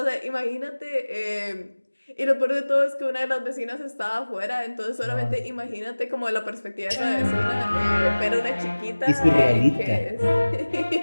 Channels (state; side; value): inverted; both; correlation -1.00